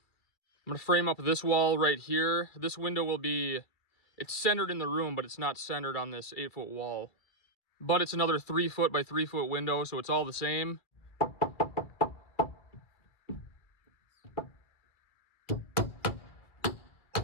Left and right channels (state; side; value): late; right; 2.3 ms